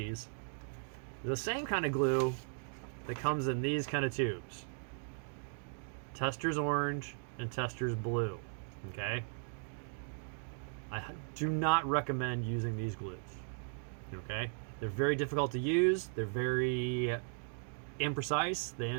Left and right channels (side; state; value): left; silent; 53 dB below the other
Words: the same kind of glue that comes in these kind of tubes. Testor's orange and Testor's blue. Okay, I do not recommend using these glues. Okay, they're very difficult to use. They're very imprecise. They